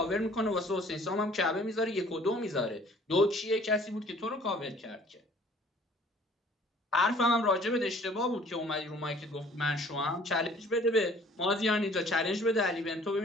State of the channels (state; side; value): normal; both; correlation 0.54